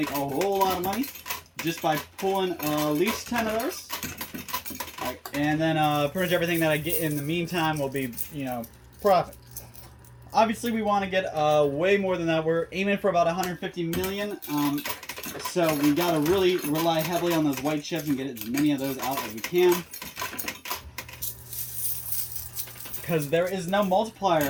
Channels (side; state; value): both; identical; correlation 1.00